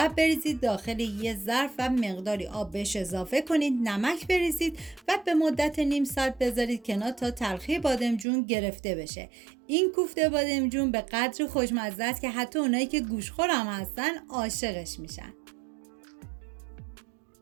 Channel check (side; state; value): left; drops out; at 8.2 s